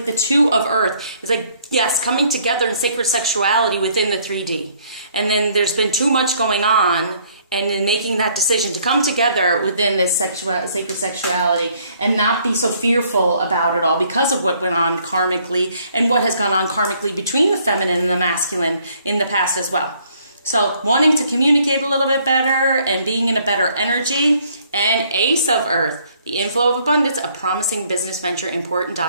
the 2 of earth. It's like, yes, coming together in sacred sexuality within the 3D. And then there's been too much going on, and then making that decision to come together within this sacred sexuality and not be so fearful about it all because of what went on karmically and what has gone on karmically between the feminine and the masculine in the past as well. So wanting to communicate a little bit better and being in a better energy. And Ace of Earth, the inflow of abundance, a promising business venture, important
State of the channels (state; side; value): inverted; both; correlation -0.64